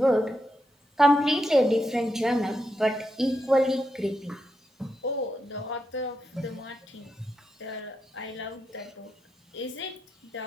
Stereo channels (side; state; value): both; normal; correlation 0.84